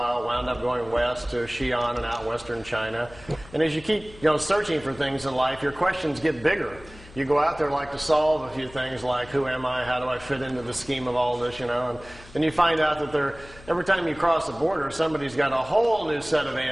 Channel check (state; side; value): noise; left; hum, 20 dB below the sound